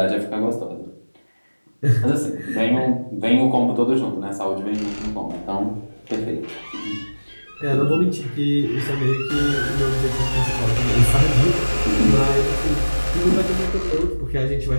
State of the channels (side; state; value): both; inverted; correlation -1.00